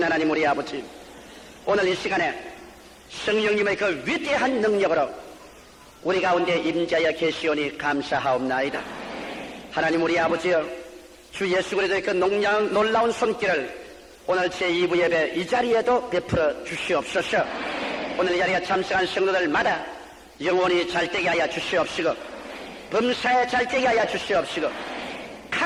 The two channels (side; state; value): both; identical; correlation 1.00